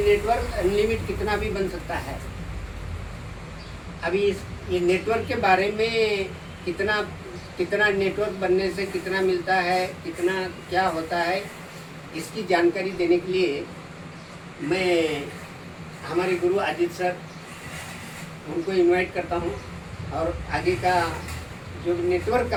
नेटवर्क अनलिमिटेड कितना भी बन सकता है। अभी ये नेटवर्क के बारे में कितना नेटवर्क बनने से कितना मिलता है, कितना क्या होता है, इसकी जानकारी देने के लिए मैं हमारे गुरु अजीत सर उनको इनवाइट करता हूँ, और आगे का जो नेटवर्क का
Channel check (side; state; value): both; identical; correlation 1.00